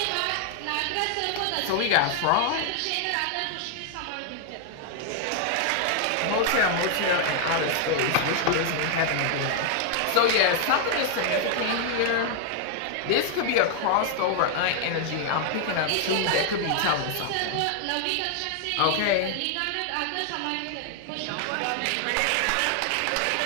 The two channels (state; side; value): different; both; correlation 0.00